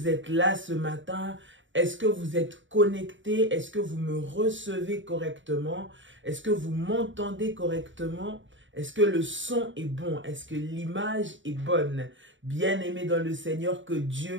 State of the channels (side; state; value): left; late; 0.55 ms